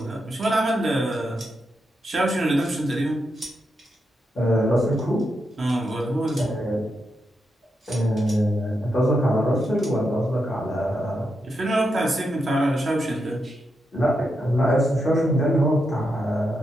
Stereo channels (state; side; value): normal; both; correlation 0.84